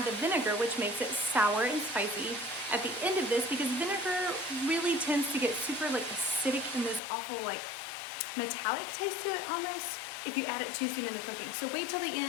the vinegar, which makes it sour and spicy at the end of this, because vinegar really tends to get super like acidic and this awful like metallic taste to it almost if you add it too soon in the cooking. So wait till the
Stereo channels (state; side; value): drops out; right; at 7.0 s